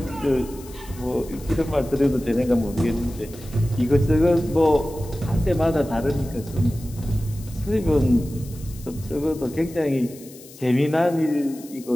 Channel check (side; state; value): left; noise; hiss, 20 dB below the sound